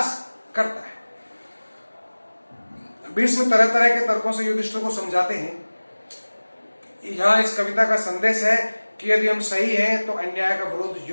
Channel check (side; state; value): both; inverted; correlation -1.00